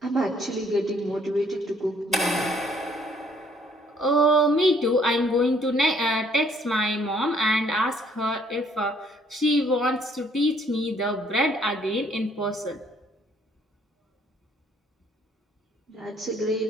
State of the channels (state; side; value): normal; both; correlation 0.63